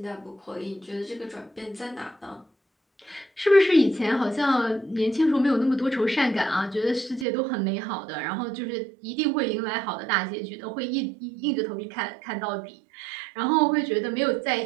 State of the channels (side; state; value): left; drops out; at 7.2 s